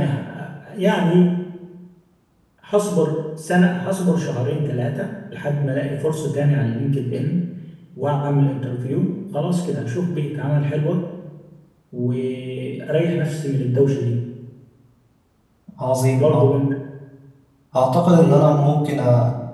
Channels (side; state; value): both; identical; correlation 1.00